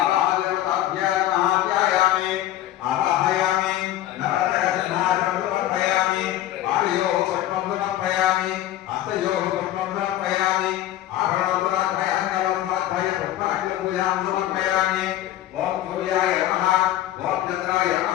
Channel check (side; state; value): right; quieter; 13.6 dB